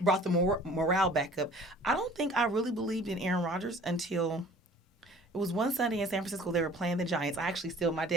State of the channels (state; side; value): normal; both; correlation 0.50